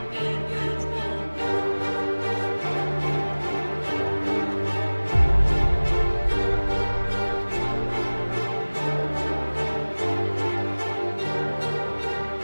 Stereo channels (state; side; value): inverted; both; correlation -1.00